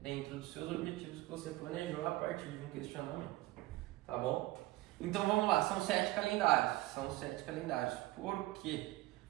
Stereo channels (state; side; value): quieter; left; 18.9 dB